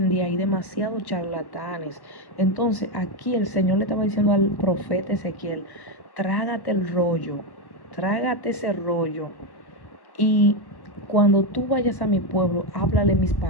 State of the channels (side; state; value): right; late; 1.1 ms